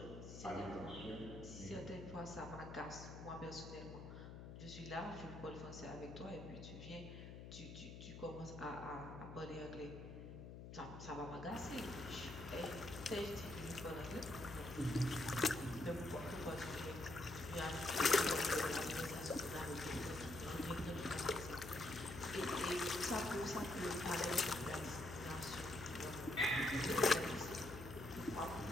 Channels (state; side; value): noise; left; hum, 10 dB below the sound